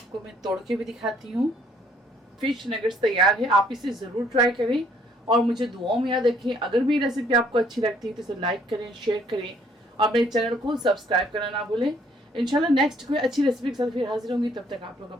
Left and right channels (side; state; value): both; normal; correlation 0.64